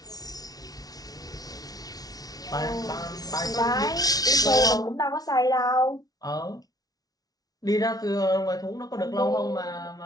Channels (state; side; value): late; right; 0.18 ms